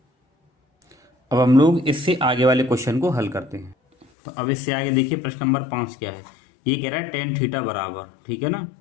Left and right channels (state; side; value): drops out; right; at 4.0 s